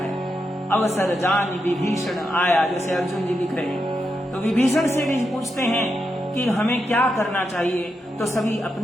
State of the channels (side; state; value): both; normal; correlation 0.85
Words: अवसर जान विभीषण आया, जैसे अर्जुन जी लिख रहे हैं। तो विभीषण से भी पूछते हैं कि हमें क्या करना चाहिए। तो सभी